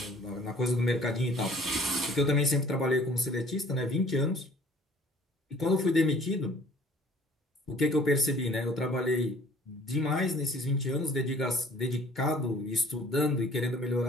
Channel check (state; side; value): normal; both; correlation 0.53